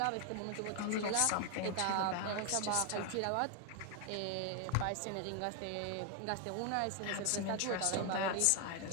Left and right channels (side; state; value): both; different; correlation 0.01